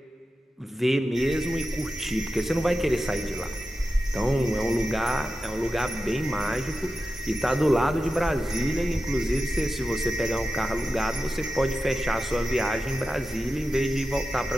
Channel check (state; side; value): normal; both; correlation 0.92